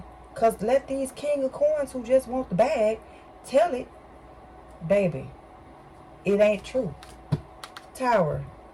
Because let these king of coins who just want the bag tell it. Baby, it ain't true. Tower,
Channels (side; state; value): both; identical; correlation 1.00